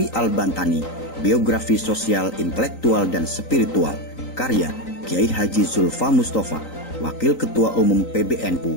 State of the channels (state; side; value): late; right; 3.9 ms